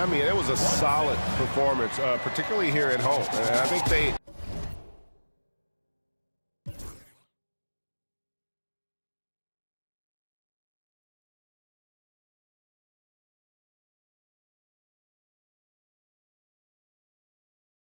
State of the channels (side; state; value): both; inverted; correlation -1.00